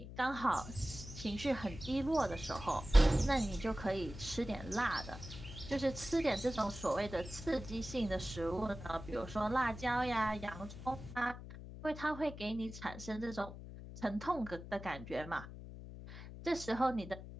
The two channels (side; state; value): left; noise; hum, 12 dB below the sound